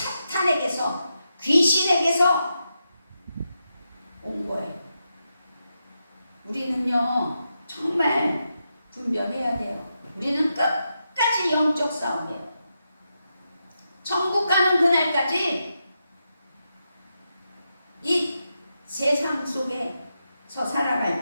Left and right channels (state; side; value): inverted; both; correlation -0.86